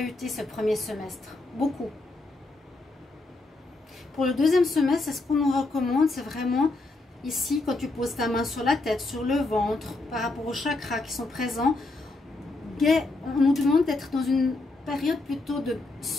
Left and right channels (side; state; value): right; quieter; 3.1 dB